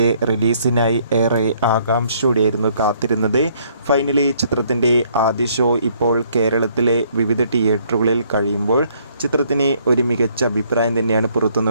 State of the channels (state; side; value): inverted; both; correlation -0.65